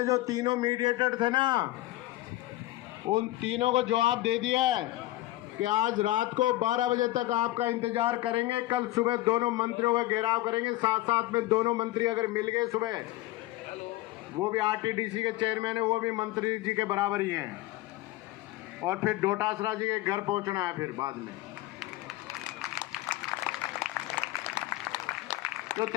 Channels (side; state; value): right; quieter; 17.3 dB